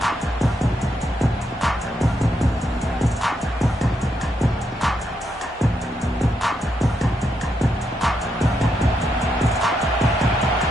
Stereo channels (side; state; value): both; normal; correlation 0.80